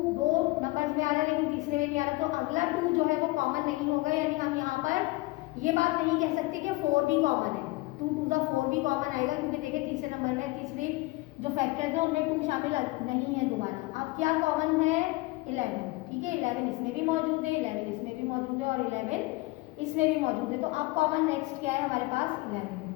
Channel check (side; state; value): right; quieter; 22.1 dB